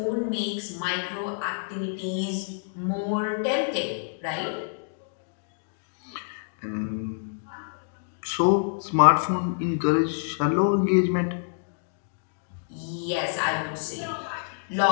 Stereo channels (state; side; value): silent; right; digital silence